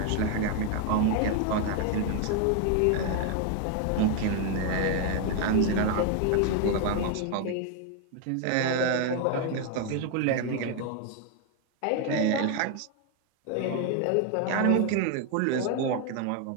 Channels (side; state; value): both; different; correlation 0.01